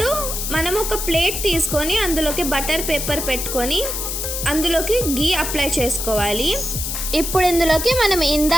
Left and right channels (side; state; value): left; noise; hiss, 3 dB below the sound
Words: మనం ఒక ప్లేట్ తీసుకొని అందులోకి బటర్ పేపర్ పెట్టుకొని అందులోకి గీ అప్లై చేసుకోవాలి. ఇప్పుడు ఇందులోకి మనం